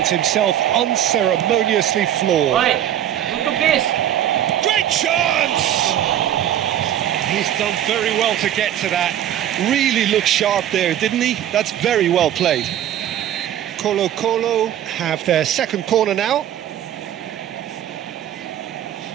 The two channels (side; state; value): left; quieter; 11.2 dB